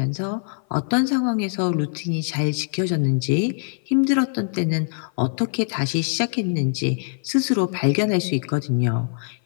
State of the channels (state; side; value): silent; right; 56 dB below the other